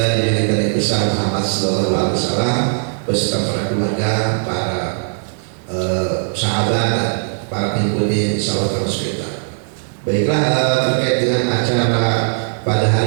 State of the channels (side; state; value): left; silent; digital silence